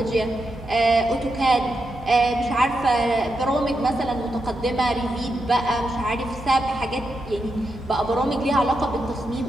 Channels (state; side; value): normal; both; correlation 0.85